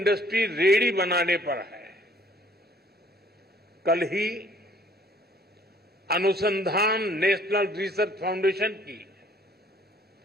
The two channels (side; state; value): both; normal; correlation 0.59